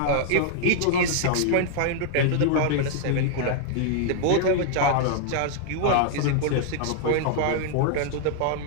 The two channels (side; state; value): both; different; correlation 0.00